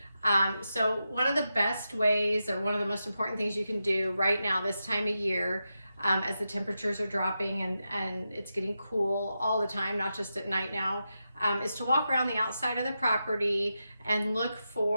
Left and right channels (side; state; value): both; inverted; correlation -0.89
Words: So one of the best ways, or one of the most important things you can do right now this time of year, as the temperatures are dropping and it's getting cool all the time, not just at night now, is to walk around the outside of the property and look